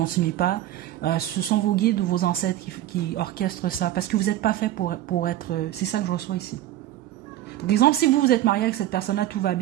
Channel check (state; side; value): quieter; left; 13.5 dB